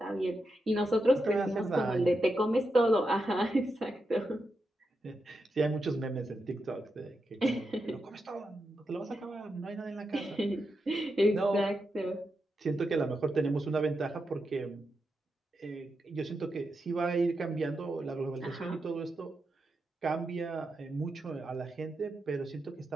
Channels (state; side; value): normal; both; correlation 0.86